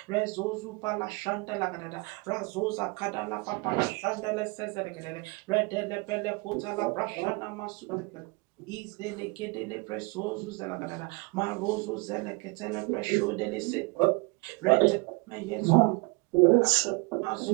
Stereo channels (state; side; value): quieter; left; 28.3 dB